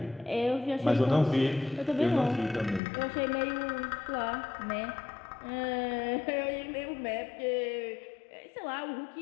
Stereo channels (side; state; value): right; drops out; at 2.8 s